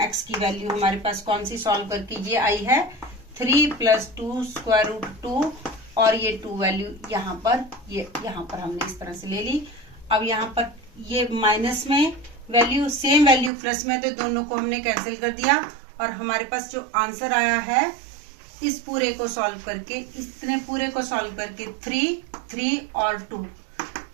x की वैल्यू हमारे पास कौन सी सॉल्व करके ये आई है 3 प्लस 2 स्क्वायर रूट 2 और ये 2 वैल्यू यहाँ पर हमने इस तरह से ले ली। अब यहाँ पर ये माइनस में वैल्यू सेम वैल्यू प्लस में, तो दोनों को हमने कैंसिल कर दिया और हमारे पास जो आंसर आया है इस पूरे को सॉल्व करके, इतने पूरे को सॉल्व करके 3 और 2,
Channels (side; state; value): left; drops out; at 13.5 s